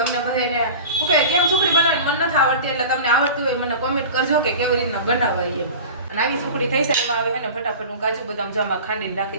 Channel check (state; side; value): inverted; both; correlation -0.36